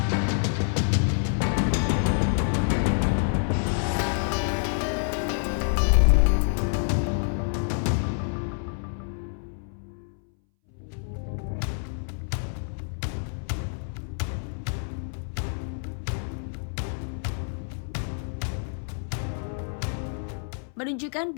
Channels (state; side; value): silent; right; 60 dB below the other